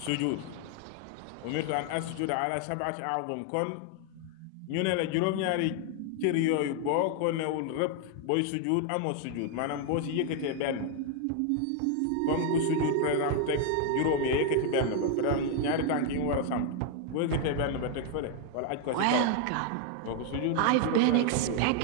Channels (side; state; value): both; different; correlation 0.01